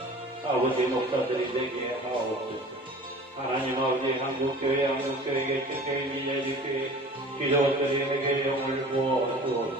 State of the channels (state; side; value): normal; both; correlation 0.42